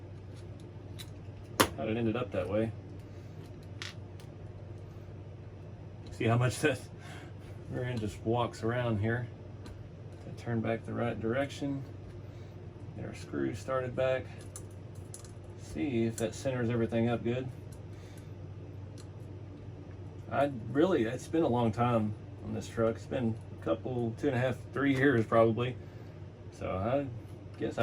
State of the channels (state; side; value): identical; both; correlation 1.00